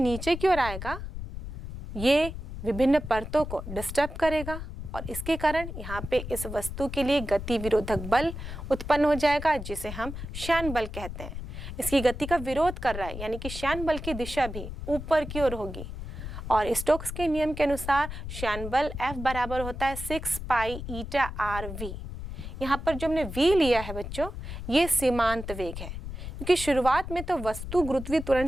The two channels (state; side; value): noise; left; rumble, 8 dB below the sound